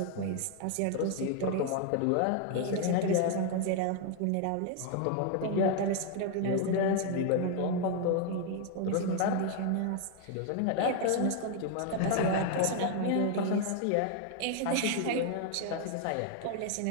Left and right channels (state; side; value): different; both; correlation 0.00